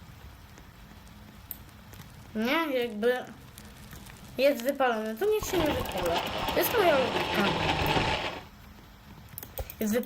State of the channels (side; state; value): both; identical; correlation 1.00